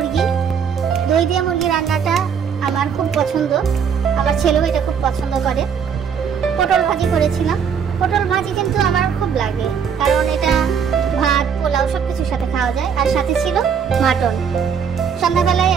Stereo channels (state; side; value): quieter; left; 7.1 dB